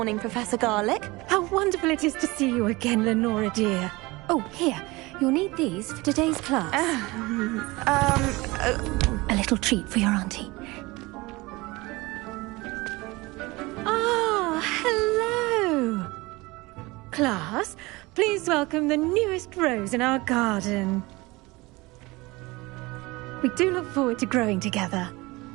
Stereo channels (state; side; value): quieter; left; 22.5 dB